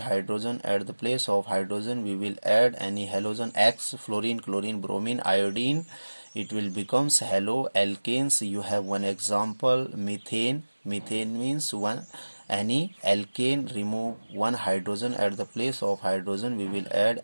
At the place of hydrogen we will add any halogen X, fluorine, chlorine, bromine, iodine. It will becomes haloalkanes. You have one example, methane. Methane means one any alkane remove one hydrogen. At the place of hydrogen we will add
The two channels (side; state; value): both; inverted; correlation -1.00